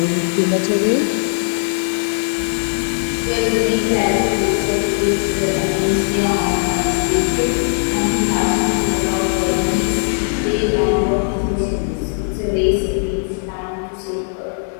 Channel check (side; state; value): right; silent; 63 dB below the other